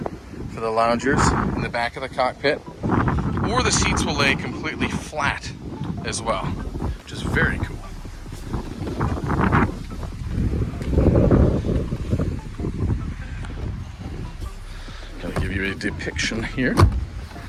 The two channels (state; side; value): identical; both; correlation 1.00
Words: for the loungers in the back of the cockpit, or the seats will lay completely flat as well, which is very cool. Give you a depiction here.